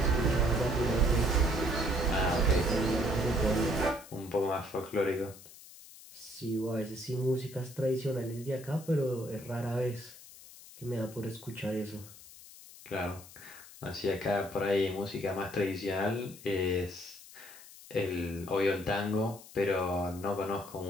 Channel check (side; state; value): left; noise; hiss, 19 dB below the sound